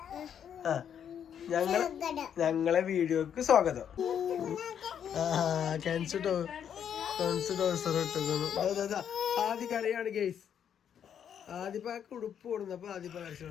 ഞങ്ങളെ വീഡിയോക്ക് സ്വാഗതം. ആദ്യ കരയാണ് ഗെയ്സ്. ആദ്യപ്പാക്ക് ഉടുപ്പ് കൊടുന്നപ്പോ ആദ്യപ്പ കരച്ചു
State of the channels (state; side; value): quieter; right; 8.7 dB